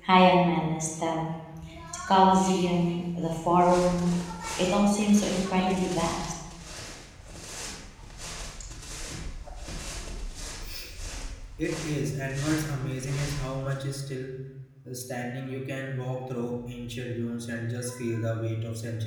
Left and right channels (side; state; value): both; identical; correlation 1.00